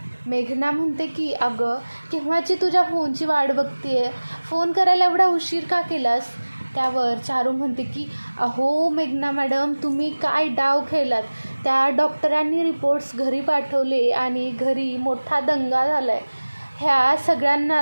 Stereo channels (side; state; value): both; inverted; correlation -1.00